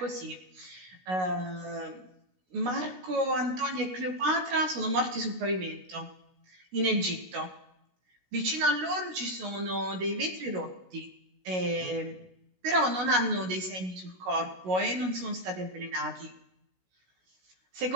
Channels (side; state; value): left; late; 16 ms